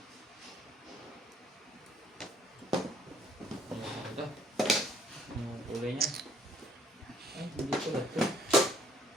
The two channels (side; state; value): both; normal; correlation 0.61